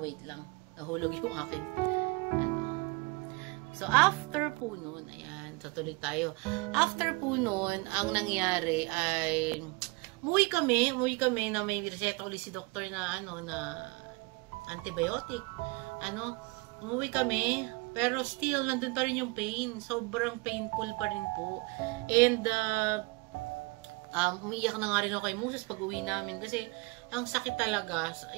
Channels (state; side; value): quieter; left; 26.6 dB